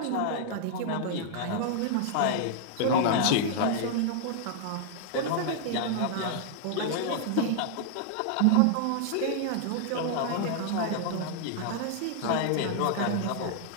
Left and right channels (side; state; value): both; different; correlation -0.01